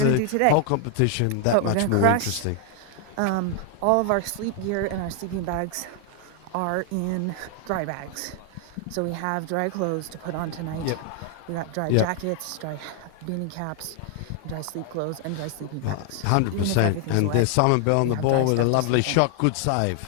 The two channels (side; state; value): both; different; correlation 0.00